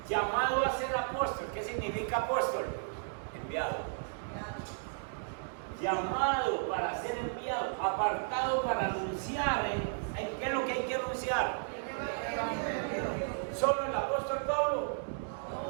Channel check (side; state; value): left; silent; digital silence